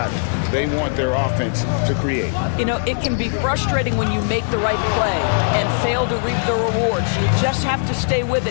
they want their offense to create. You know, it can be frustrating when you make the right play and fail to reap the rewards. You just have to stay with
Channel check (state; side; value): silent; right; digital silence